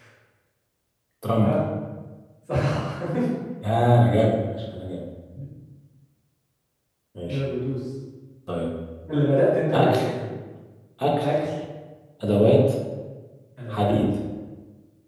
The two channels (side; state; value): both; identical; correlation 1.00